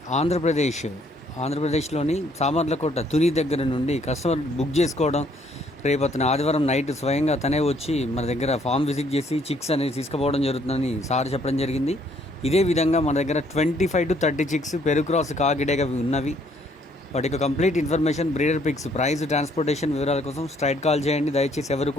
ఆంధ్రప్రదేశ్లోని సామర్లకోట తుని దగ్గర నుండి కస్టమర్ బుక్ చేసుకోవడం, రేపు అతను ఆదివారం నైట్ స్వయంగా తనే వచ్చి మన దగ్గర ఫామ్ విజిట్ చేసి చిక్స్ అనేది తీసుకుపోవడం జరుగుతుందని సార్ చెప్పడం జరిగింది. ఇదే విధంగా మన దగ్గర 25 to 30 చిక్స్ పెరుగు క్రాస్ కాకిడేగా ఉన్నవి. వాటి యొక్క complete information, breeder pics, price, transportation వివరాల కోసం స్ట్రైట్ కాల్ చేయండి. దయచేసి ఎవరు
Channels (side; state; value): both; normal; correlation 0.65